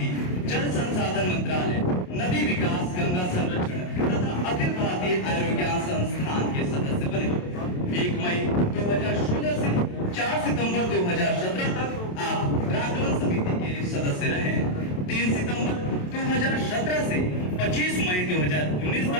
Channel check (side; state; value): right; late; 27 ms